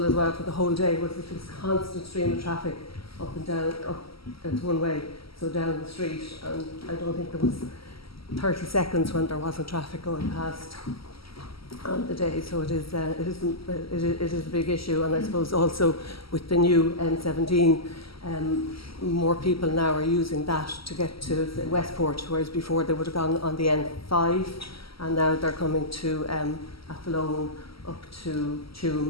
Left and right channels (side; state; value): right; late; 0.75 ms